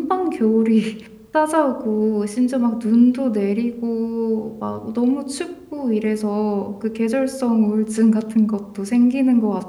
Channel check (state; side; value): identical; both; correlation 1.00